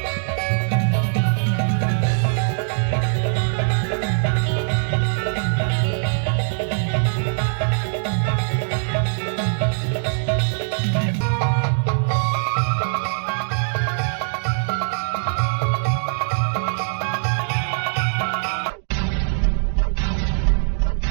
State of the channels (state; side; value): silent; left; digital silence